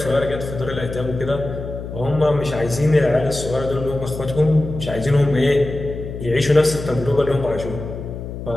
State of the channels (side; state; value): left; noise; hum, 9 dB below the sound